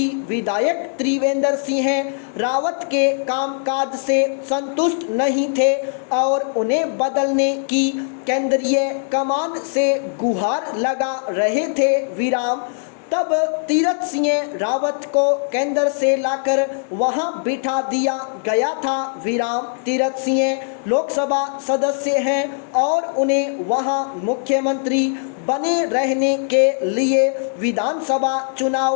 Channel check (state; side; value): silent; right; 61 dB below the other